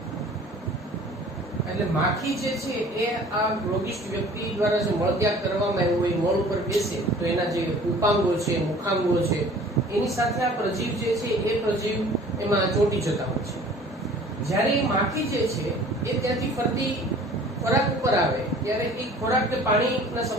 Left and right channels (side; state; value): both; normal; correlation 0.48